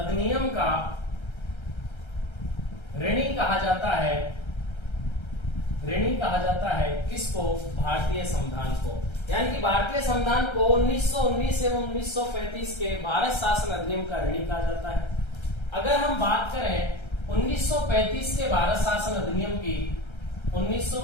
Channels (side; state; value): right; late; 1.3 ms